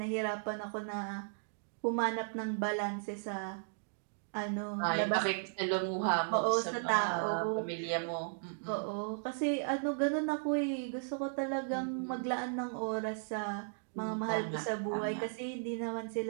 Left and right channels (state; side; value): silent; left; digital silence